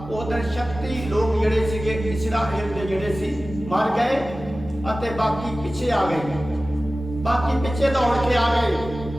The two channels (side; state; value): right; noise; hum, 20 dB below the sound